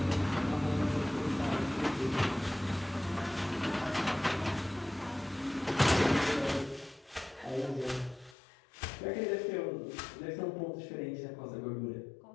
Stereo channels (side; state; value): right; drops out; at 8.3 s